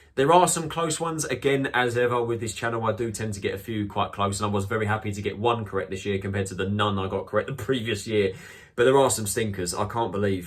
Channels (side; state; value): both; identical; correlation 1.00